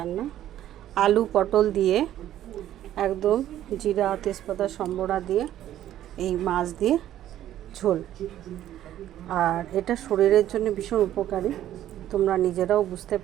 আলু পটল দিয়ে একদম জিরা তেজপাতা সম্বরা দিয়ে এই মাছ দিয়ে ঝোল। আর এটা শরীরের জন্য ভীষণ উপকারী, তোমরা নিজেরাও বুঝতে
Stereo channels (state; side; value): quieter; left; 12.3 dB